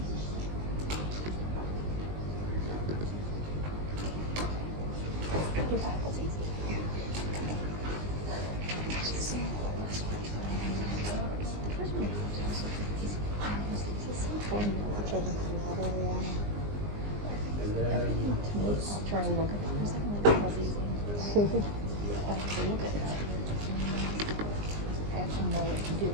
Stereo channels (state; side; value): late; left; 20 ms